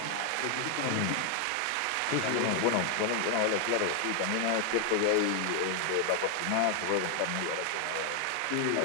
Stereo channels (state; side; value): different; both; correlation 0.00